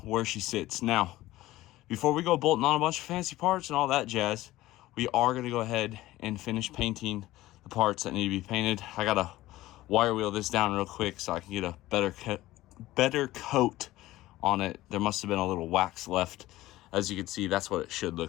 where she sits. Now, before we go bolting on a bunch of fancy parts and all that jazz, we are going to go ahead and finish painting the parts that need to be painted. I got to wire wheel this down real quick so I can get a better coat on it. There must have been a little wax left. As you can see, that's what it should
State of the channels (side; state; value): right; quieter; 16.7 dB